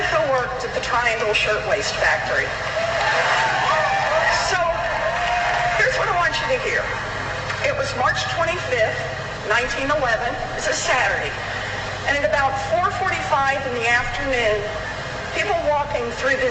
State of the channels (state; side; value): identical; both; correlation 1.00